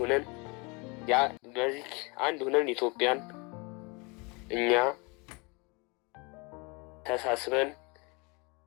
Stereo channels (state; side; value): quieter; right; 29.3 dB